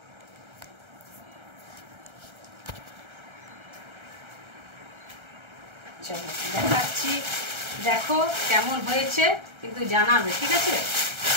চলো দেখাচ্ছি, দেখো কেমন হয়েছে, কিন্তু জানাবে, ঠিক আছে?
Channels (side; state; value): left; late; 1.3 ms